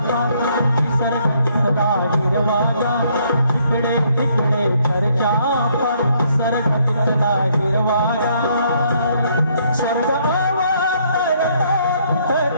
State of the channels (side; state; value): both; inverted; correlation -0.68